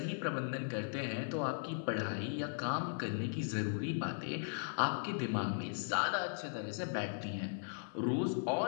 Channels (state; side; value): silent; right; 52 dB below the other